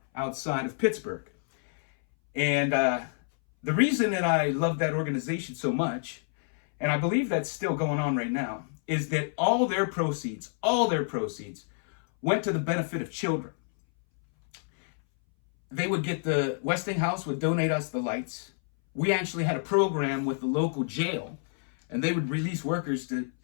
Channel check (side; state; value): right; silent; 59 dB below the other